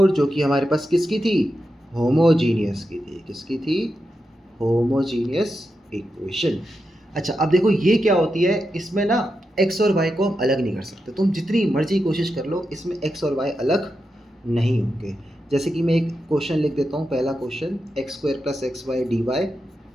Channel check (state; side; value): normal; both; correlation 0.88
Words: जो कि हमारे पास किसकी थी, होमोजीनियस की थी। किसकी थी, होमोजीनियस इक्वेशन। अच्छा अब देखो ये क्या होती है, इसमें ना एक्स और वाई को हम अलग नहीं कर सकते। तुम जितनी मर्जी कोशिश कर लो, इसमें एक्स और वाई अलग नहीं होंगे। जैसे कि मैं एक क्वेश्चन लिख देता हूँ। पहला question, x square plus x y d y